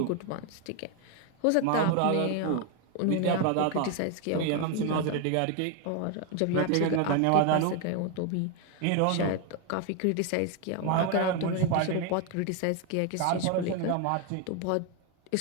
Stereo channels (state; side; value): different; both; correlation 0.01